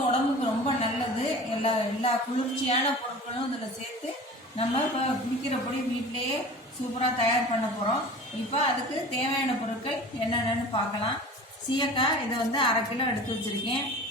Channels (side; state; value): both; normal; correlation 0.39